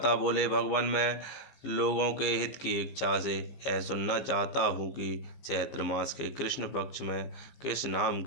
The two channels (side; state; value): right; late; 15 ms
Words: बोले, भगवान, मैं लोगों के हित की इच्छा से यह सुनना चाहता हूँ कि चैत्र मास के कृष्ण पक्ष में किस नाम